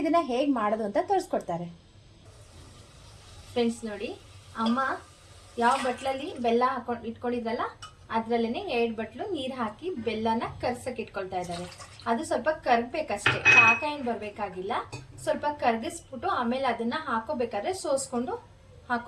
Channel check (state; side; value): identical; both; correlation 1.00